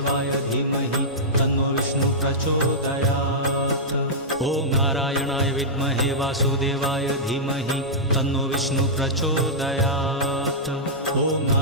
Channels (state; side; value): normal; both; correlation -0.11